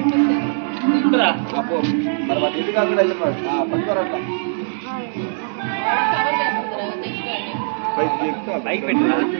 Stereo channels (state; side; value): silent; left; digital silence